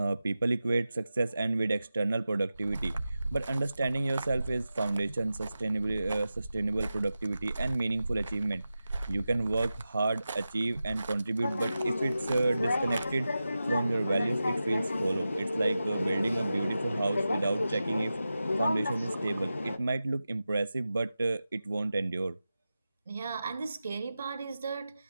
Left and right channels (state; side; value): inverted; both; correlation -0.93